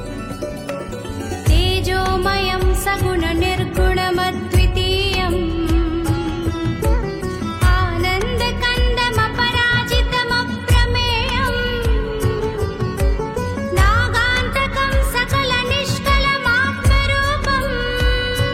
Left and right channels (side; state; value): both; identical; correlation 1.00